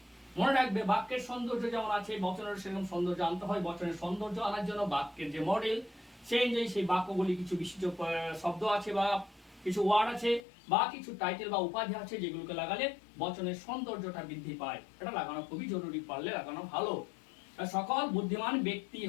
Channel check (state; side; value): drops out; right; at 10.4 s